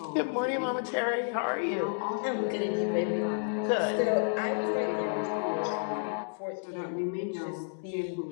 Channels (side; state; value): right; silent; digital silence